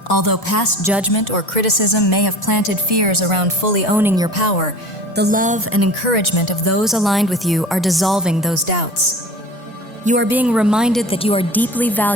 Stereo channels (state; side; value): normal; both; correlation 0.40